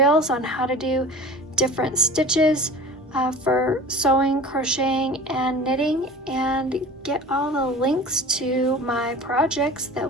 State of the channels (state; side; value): normal; both; correlation 0.39